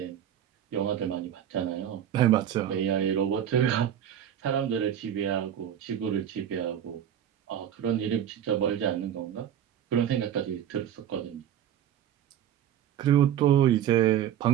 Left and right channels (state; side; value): quieter; left; 10.2 dB